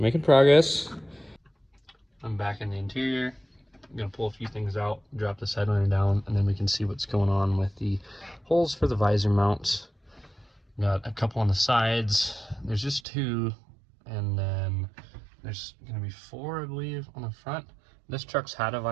progress. I'm back in the interior. I'm gonna pull a few things out, drop this headliner down, and then we can see what's going on with the holes for the visor mounts. Got a couple on the sides. There's just 2, and then there's gonna be 4, I believe, on the front. This truck's had a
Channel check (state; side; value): drops out; left; at 13.0 s